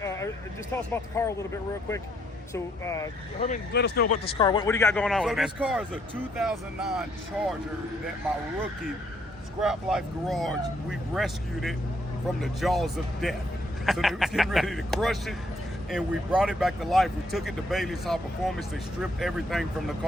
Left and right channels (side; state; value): both; normal; correlation 0.71